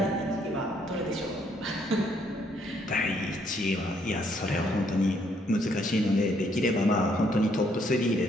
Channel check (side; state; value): both; normal; correlation 0.69